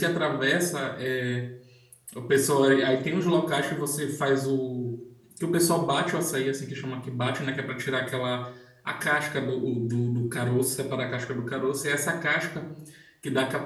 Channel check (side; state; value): both; identical; correlation 1.00